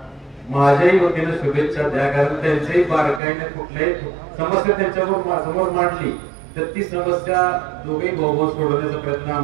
माझ्याही वतीने शुभेच्छा द्या. कारण त्यांच्याही बारकाईने कुठल्याही समस्या त्यांच्यावर समोर मांडली तर ती समस्या दोघे भाऊ सोडवण्याचा प्रयत्न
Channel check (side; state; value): left; drops out; at 3.2 s